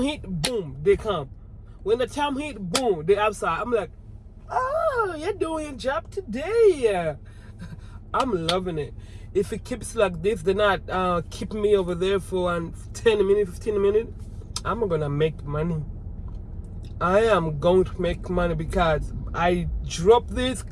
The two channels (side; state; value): both; identical; correlation 1.00